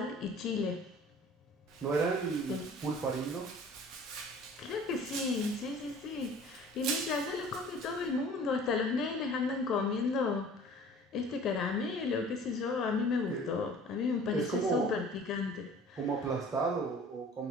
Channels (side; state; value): both; normal; correlation 0.47